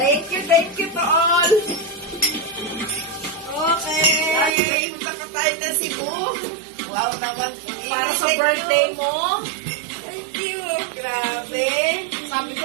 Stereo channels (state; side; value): drops out; left; at 4.5 s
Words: you to all. Okay. Punta tayo na Cebu. Wow naman. Para sa birthday mo. Thank you. Grabe. Sabi